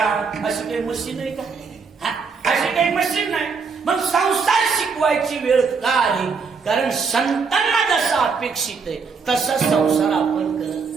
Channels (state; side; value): quieter; left; 5.2 dB